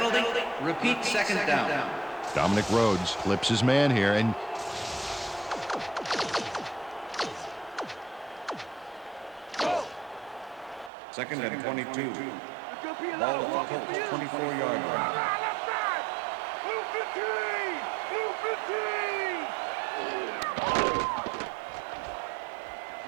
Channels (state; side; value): drops out; left; at 10.9 s